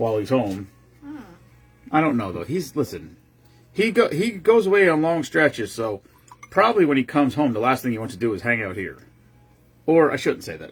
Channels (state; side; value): identical; both; correlation 1.00